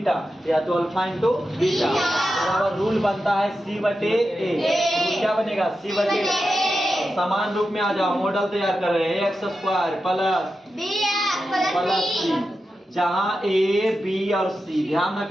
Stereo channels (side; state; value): both; normal; correlation 0.90